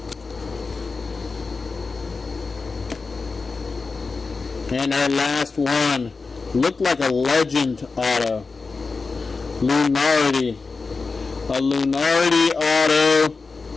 And our last one, looked like a legend auto. Lunardi. A Lunardi auto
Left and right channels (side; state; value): right; quieter; 4.3 dB